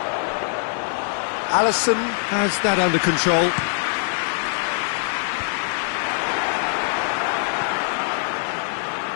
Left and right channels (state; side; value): silent; right; digital silence